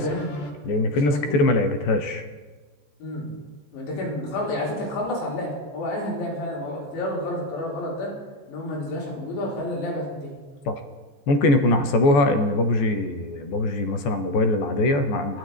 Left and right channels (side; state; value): right; late; 14 ms